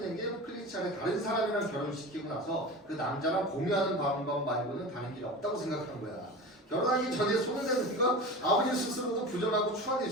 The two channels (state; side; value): normal; both; correlation 0.31